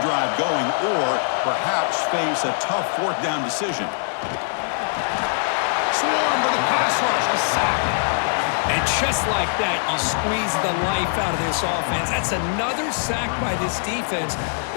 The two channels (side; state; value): right; silent; digital silence